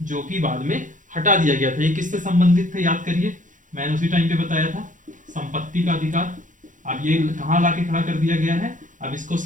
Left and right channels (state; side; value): late; left; 0.37 ms